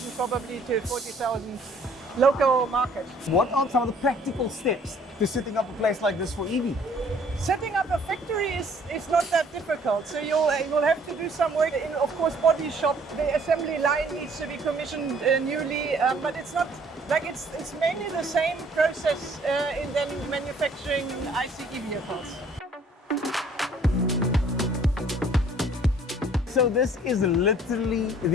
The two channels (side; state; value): both; normal; correlation 0.58